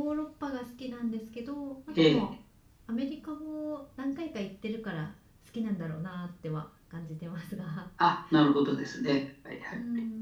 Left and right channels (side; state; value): both; identical; correlation 1.00